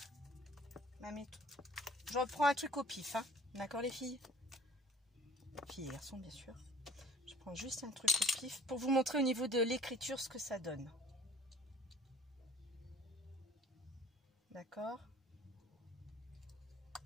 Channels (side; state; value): both; normal; correlation 0.50